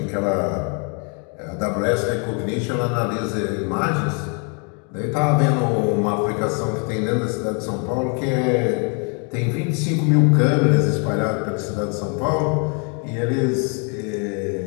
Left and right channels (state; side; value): quieter; right; 37.1 dB